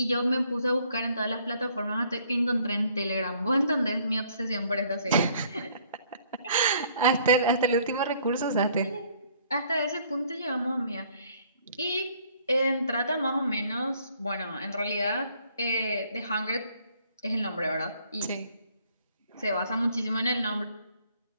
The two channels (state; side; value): inverted; both; correlation -0.62